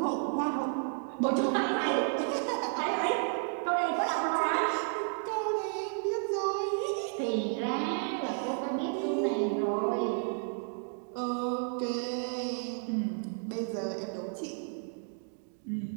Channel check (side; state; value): left; silent; 56 dB below the other